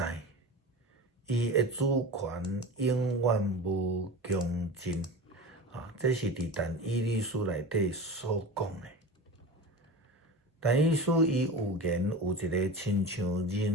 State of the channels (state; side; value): normal; both; correlation 0.30